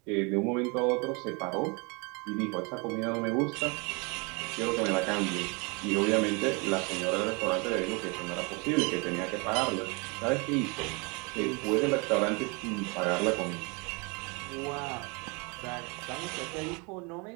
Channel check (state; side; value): quieter; left; 30.4 dB